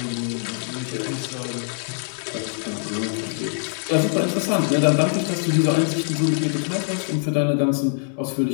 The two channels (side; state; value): right; silent; 63 dB below the other